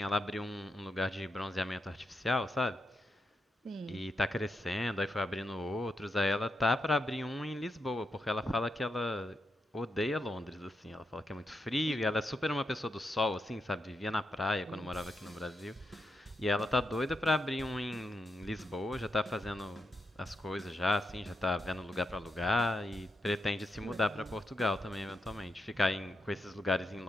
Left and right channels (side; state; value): both; normal; correlation 0.84